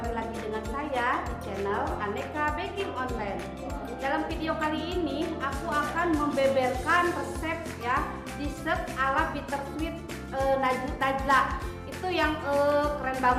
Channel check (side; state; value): both; identical; correlation 1.00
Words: lagi dengan saya di channel Aneka Baking Online. Dalam video kali ini, aku akan membeberkan resep ya dessert ala bittersweet Najla. Itu yang keren